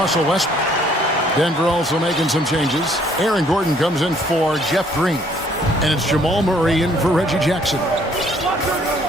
Westbrook. Denver also making some changes. Aaron Gordon comes in for Jeff Green. And it's Jamal Murray in for Reggie Jackson.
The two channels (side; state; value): both; normal; correlation 0.63